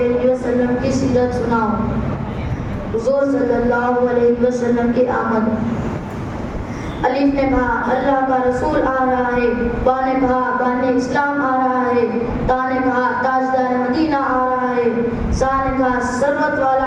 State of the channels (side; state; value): both; identical; correlation 1.00